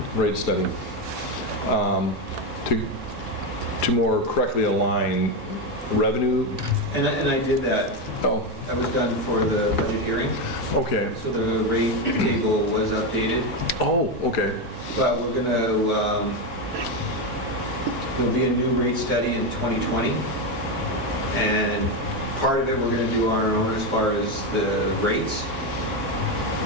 rate study, to more correctly align revenue. And I did that. Oh, That was done for the budget hearing. okay. So the rate table was updated. Oh, okay. But we're going to, there'll be a new rate study in 2020. And part of it we're going to do on our own as far as the rates.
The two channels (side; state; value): both; normal; correlation 0.10